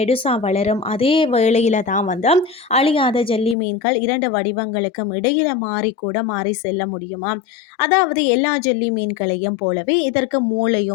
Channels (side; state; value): right; drops out; at 3.6 s